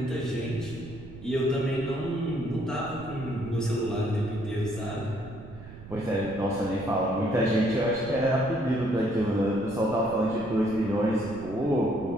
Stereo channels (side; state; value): right; noise; rumble, 15 dB below the sound